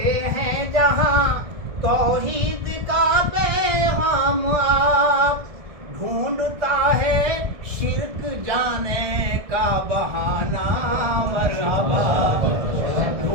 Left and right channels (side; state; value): left; late; 1.7 ms